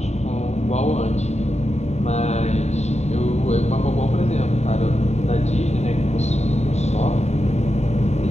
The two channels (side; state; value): right; late; 0.32 ms